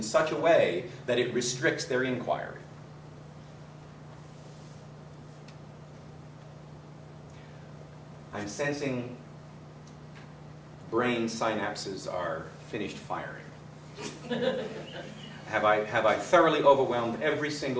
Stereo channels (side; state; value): both; identical; correlation 1.00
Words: such a way that it restricts their inquiry. I'm sensing brain synapses are finished firing. Have I thoroughly overwhelmed every